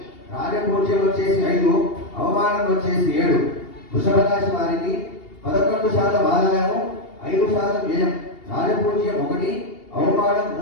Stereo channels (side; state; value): right; late; 2.8 ms